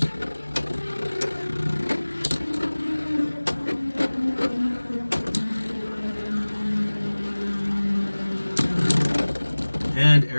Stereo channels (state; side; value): inverted; both; correlation -1.00